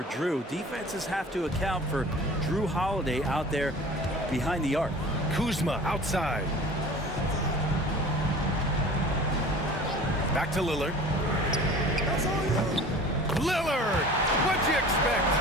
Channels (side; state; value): both; normal; correlation 0.42